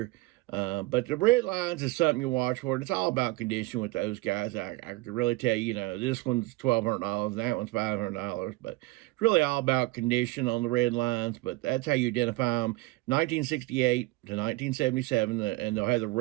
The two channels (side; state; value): left; quieter; 20.7 dB